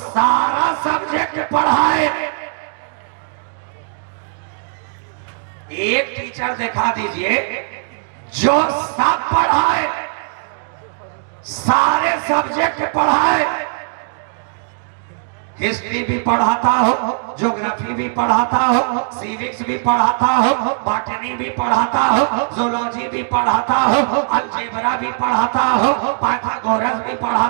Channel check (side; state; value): left; silent; digital silence